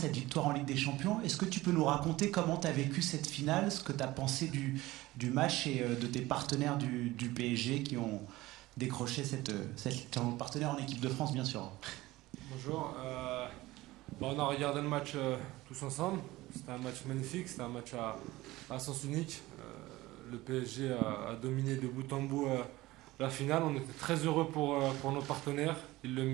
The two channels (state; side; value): quieter; left; 18.5 dB